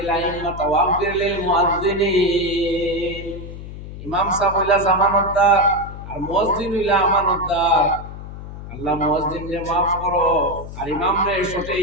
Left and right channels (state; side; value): noise; left; hum, 11 dB below the sound